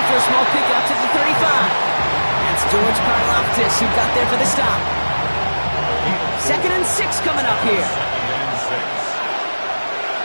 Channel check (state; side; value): inverted; both; correlation -1.00